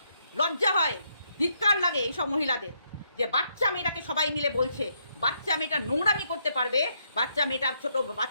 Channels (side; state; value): both; inverted; correlation -0.76